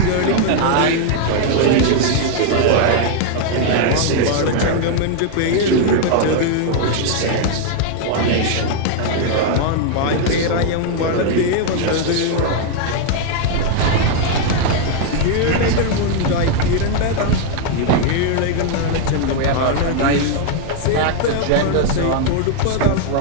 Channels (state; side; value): different; both; correlation 0.00